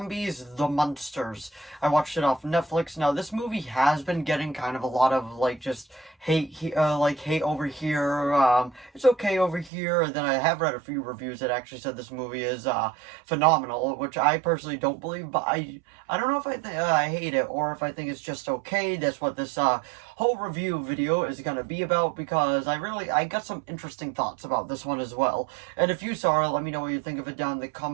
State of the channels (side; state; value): left; drops out; at 9.7 s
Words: The Munsters. I watched it off Netflix. Now, this movie has been getting kind of a lot of, just hate over here, it's okay over here, and then I have read a few reviews that actually said this movie is, phenomenal, which I personally don't believe, but I don't know if I hate it, or if I think it's just okay. That's what this, whole review video is gonna be about, because I got some interesting thoughts about this one as well, and if you saw it, let me know what you think of it down in the